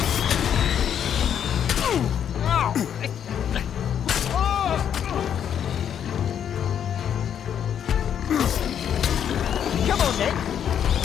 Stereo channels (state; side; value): quieter; right; 8.9 dB